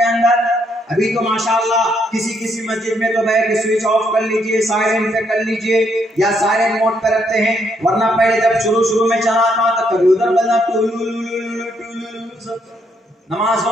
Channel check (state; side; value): normal; both; correlation 0.73